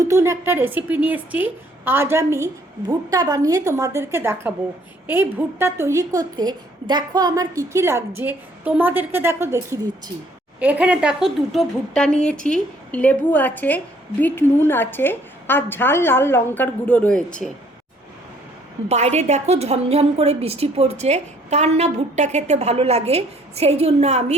একটা রেসিপি নিয়ে এসেছি। আজ আমি ভুট্টা বানিয়ে তোমাদেরকে দেখাবো। এই ভুট্টা তৈরি করতে দেখো আমার কী কী লাগছে, তোমাদেরকে দেখো দেখিয়ে দিচ্ছি। এখানে দেখো দুটো ভুট্টা নিয়েছি, লেবু আছে, বিট নুন আছে, আর ঝাল লাল লঙ্কার গুঁড়ো রয়েছে। বাইরে দেখো ঝমঝম করে বৃষ্টি পড়ছে, কার না ভুট্টা খেতে ভালো লাগে, সেই জন্য আমি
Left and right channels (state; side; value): normal; both; correlation 0.62